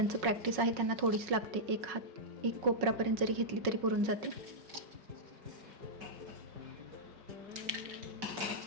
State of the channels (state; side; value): late; left; 5.4 ms